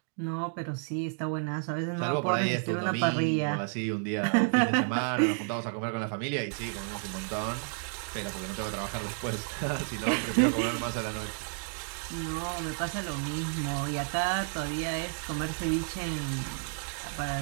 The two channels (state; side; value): silent; left; 57 dB below the other